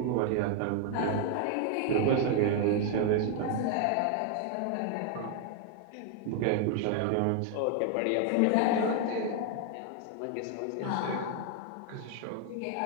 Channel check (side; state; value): both; different; correlation 0.00